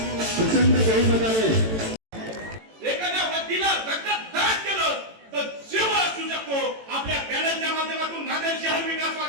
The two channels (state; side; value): late; left; 18 ms